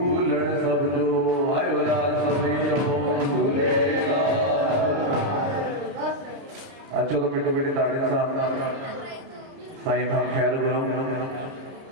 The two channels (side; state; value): left; late; 30 ms